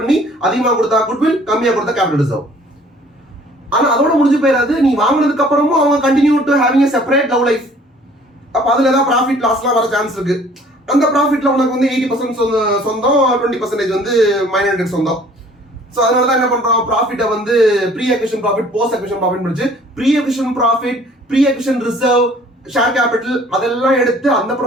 அதிகமாக கொடுத்தா குட்வில், கம்மியாக கொடுத்தா கேபிட்டல் ரிசர்வ். ஆனா அதோட முடிஞ்சு போயிடாது. நீ வாங்கினதுக்கு அப்புறமும் அவங்க continue to having a separate love life. அப்ப அதுல ஏதாவது ப்ராஃபிட் லாஸ்லாம் வர சான்ஸ் இருக்கு. அந்த ப்ராஃபிட்ல உனக்கு வந்து 80% சொந்தம், 20% வந்து மைனாரிட்டி சொந்தம். ஸோ அதனால தான் என்ன பண்றோம், ப்ராஃபிட்டை வந்து pre acquisition profit, post acquisition profit முடிச்சு pre acquisition profit, pre acquisition reserve, share capital அதெல்லாம் எடுத்து அந்த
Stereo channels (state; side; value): normal; both; correlation 0.54